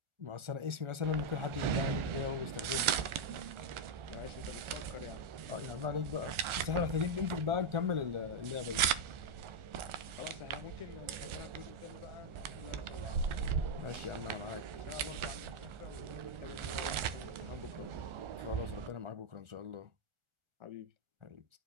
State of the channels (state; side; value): late; left; 1.4 ms